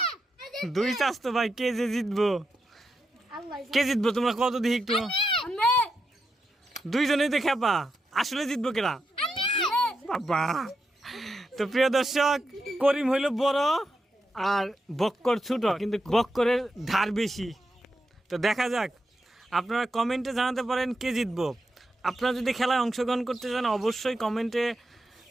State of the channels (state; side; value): normal; both; correlation 0.86